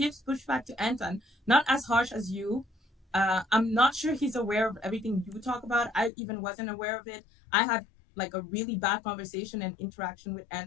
pushback to Anton, not as harsh as you. I'm not sure he's aware of everything you talk about. I even wasn't aware of it. I had like a really bad conversation and interaction with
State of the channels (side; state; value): right; drops out; at 6.1 s